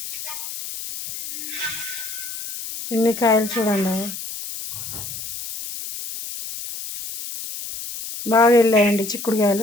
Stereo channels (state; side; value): noise; left; hiss, 8 dB below the sound